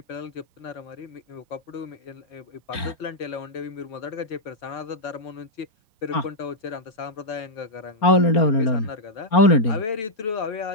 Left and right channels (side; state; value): right; late; 4.4 ms